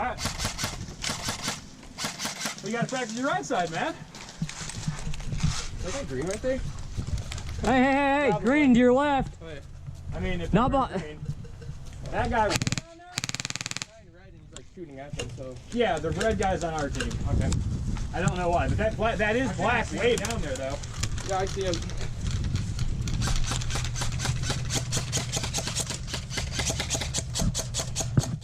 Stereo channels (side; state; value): both; identical; correlation 1.00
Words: right. Well, you got to practice your right side, man. Is that green right there? Hey, Probably. green to your left. I mean, if Not you're bo- green, that guy. Red and he's like shooting at them, so. Yeah, the red guy's on our team. Okay. I don't know why, but that is black way down there, though. Yeah, I see him.